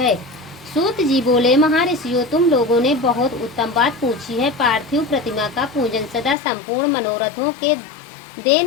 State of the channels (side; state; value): right; drops out; at 6.4 s